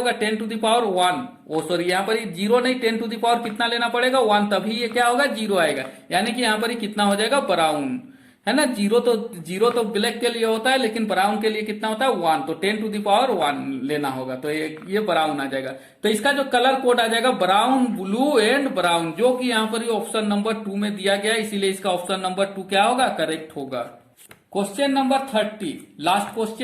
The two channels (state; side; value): identical; both; correlation 1.00